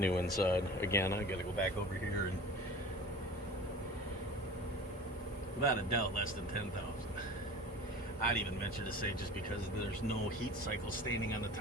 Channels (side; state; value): both; normal; correlation 0.39